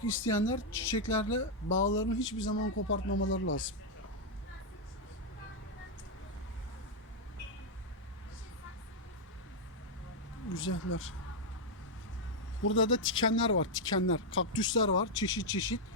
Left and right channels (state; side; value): normal; both; correlation -0.02